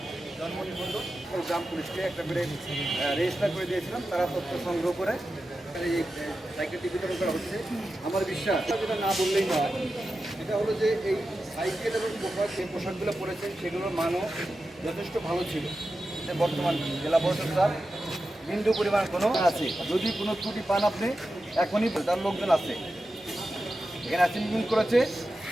জন্ম নিবন্ধন গ্রাম পুলিশকে একটা করে রেজিস্টার করে দিয়েছিলাম। তারা তথ্য সংগ্রহ করে এই সাইকেলটি বিতরণ করা হচ্ছে। আমার বিশ্বাস যেটা না বললেই নয়, এটা হলো যে এই সাইকেল এবং পোশাক যে পোশাকগুলো পরেছেন সেগুলোর মানও যথেষ্ট ভালো ছিল। বর্তমান জেলা পরিষদ স্যার বিন্দু পরিমাণ কোনো আছে, যদি কোনো ত্রুটি পান আপনি এখনই তার লোকজন আছে এখানে অ্যাসেম্বলিং করেছে।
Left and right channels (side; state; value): both; normal; correlation 0.92